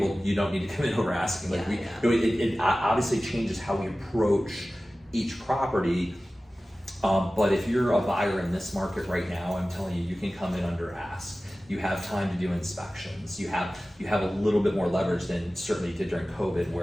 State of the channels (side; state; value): both; normal; correlation 0.96